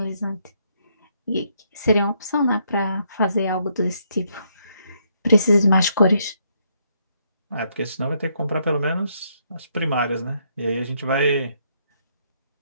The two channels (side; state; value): both; inverted; correlation -0.73